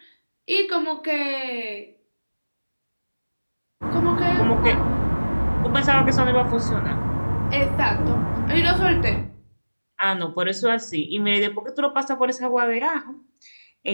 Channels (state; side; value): inverted; both; correlation -1.00